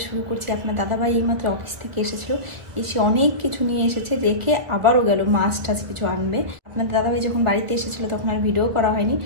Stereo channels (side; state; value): left; late; 1.6 ms